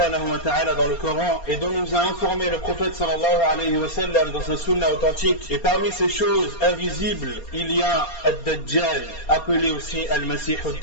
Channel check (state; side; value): late; right; 4.3 ms